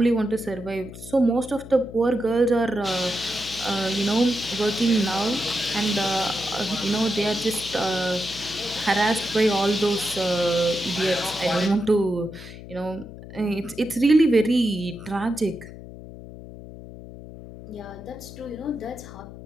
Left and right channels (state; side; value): noise; left; hum, 14 dB below the sound